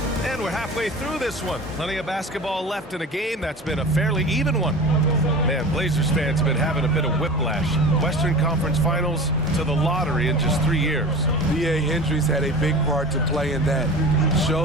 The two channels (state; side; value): normal; both; correlation 0.35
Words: And we're halfway through this one. Plenty of basketball left in a game that's been a fairly even one. Man, Blazers fans have been having a bit of whiplash. Western Conference Finals to the lottery in just 3 years. B.A. Hendricks had a big part to play in that.